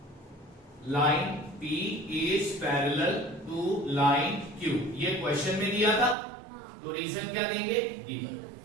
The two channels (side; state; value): left; drops out; at 6.2 s